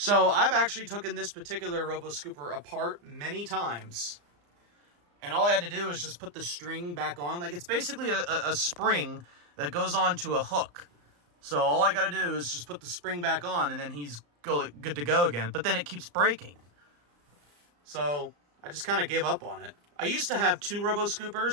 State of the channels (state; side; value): late; left; 34 ms